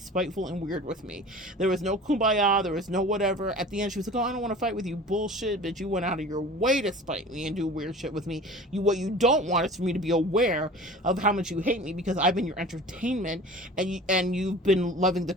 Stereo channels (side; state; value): both; normal; correlation 0.41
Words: and weird with me. There was no kumbaya, there was no whatever. At the end, she was like, oh, I don't want to fight with you. Bullshit, bitch. You went out of your way to spite me and do weird shit with me. What you don't want is for me to be aware of how much you hate me, because I've been your entertainment, and you've been loving the